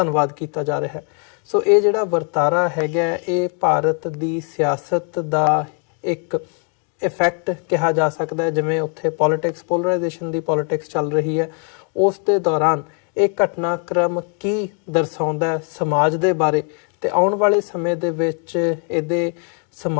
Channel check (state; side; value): quieter; right; 39.8 dB